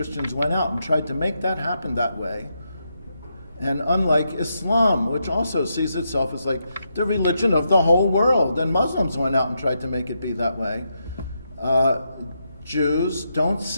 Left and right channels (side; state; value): both; inverted; correlation -0.83